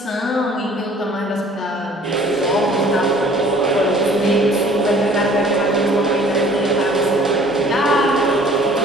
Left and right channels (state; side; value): normal; both; correlation 0.53